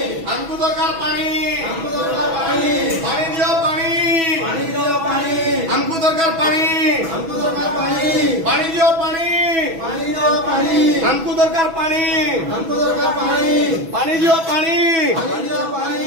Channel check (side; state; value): left; late; 6.1 ms